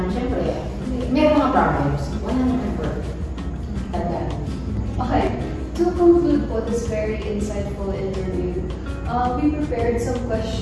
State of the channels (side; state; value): both; identical; correlation 1.00